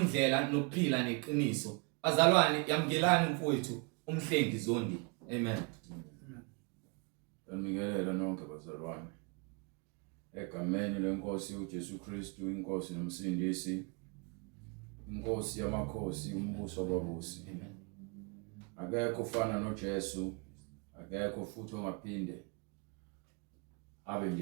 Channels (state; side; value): quieter; left; 32.5 dB